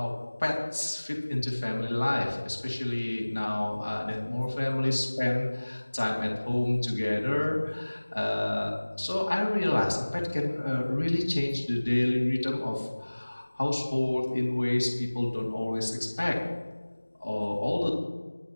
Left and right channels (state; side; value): inverted; both; correlation -1.00